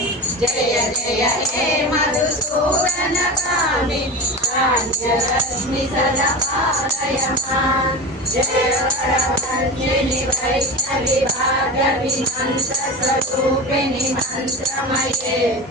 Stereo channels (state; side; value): normal; both; correlation 0.28